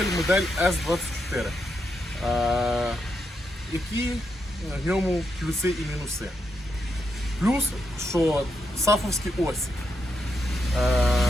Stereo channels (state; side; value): normal; both; correlation 0.82